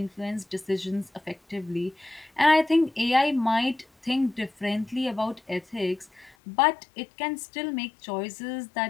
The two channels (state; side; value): drops out; right; at 6.4 s